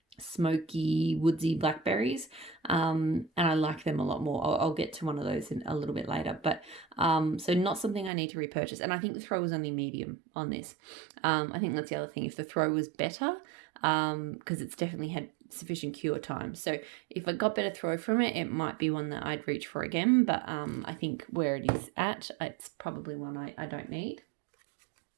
smoky, woodsy blackberries, and I like them a lot more. I'll get to one of those in a little bit later, but so not something I need to repurchase. And I think the throw was only medium on this. I think that's the other thing. If the throw was better, because it's definitely had sufficient cure time. So if I got better throw from it, it might be one that I'd reach for again. But I think where it is at, it's probably one I don't need.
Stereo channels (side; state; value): left; drops out; at 8.1 s